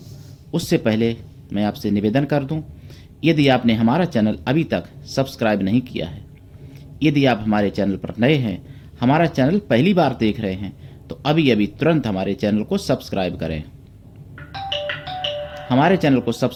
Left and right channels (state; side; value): identical; both; correlation 1.00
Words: उससे पहले मैं आपसे निवेदन कर दूं, यदि आपने हमारा चैनल अभी तक सब्सक्राइब नहीं किया है, यदि आप हमारे चैनल पर नए हैं, हमारा चैनल पहली बार देख रहे हैं, तो अभी अभी तुरंत हमारे चैनल को सब्सक्राइब करें। हमारे चैनल को